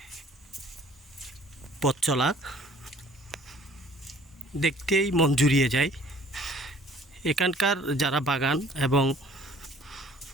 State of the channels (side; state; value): both; normal; correlation 0.53